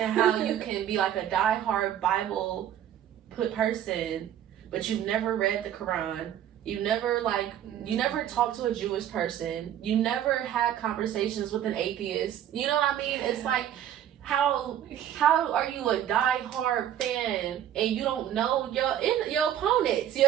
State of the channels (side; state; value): left; quieter; 10.7 dB